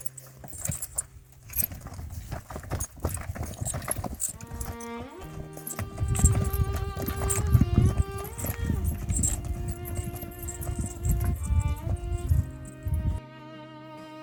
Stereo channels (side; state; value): both; identical; correlation 1.00